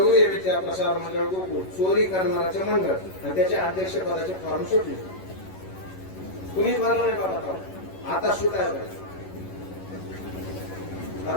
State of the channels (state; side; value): late; right; 11 ms